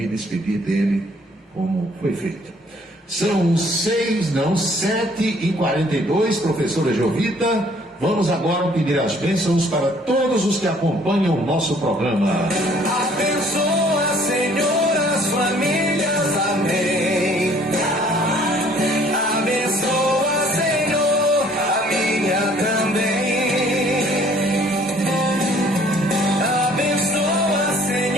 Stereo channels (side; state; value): both; normal; correlation 0.59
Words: despedir dele como foi feito. São 7h42, professora Jovita. Vamos agora pedir as bênçãos para todos os que acompanham o nosso programa. Abençoa, Senhor, as famílias, amém. Abençoa, Senhor, a minha também. Abençoa,